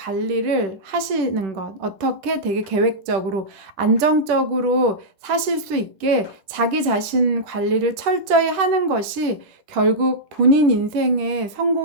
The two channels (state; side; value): late; left; 10 ms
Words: 하시는 것, 어떻게 되게 계획적으로 안정적으로 사실 수 있게 자기 자신 관리를 철저히 하는 것이 결국 본인 인생의